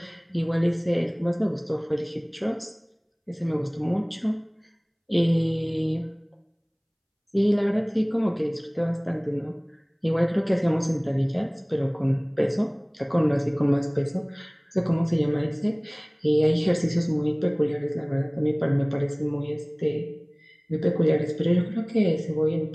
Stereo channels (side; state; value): both; identical; correlation 1.00